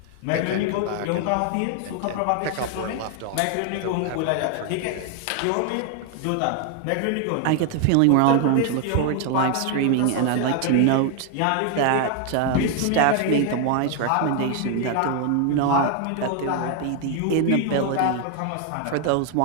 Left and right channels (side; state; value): both; different; correlation 0.00